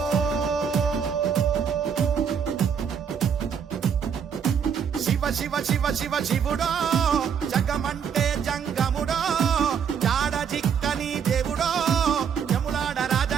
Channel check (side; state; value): left; quieter; 7.4 dB